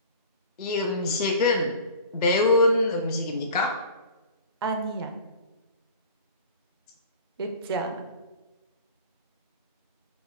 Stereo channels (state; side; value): inverted; both; correlation -0.42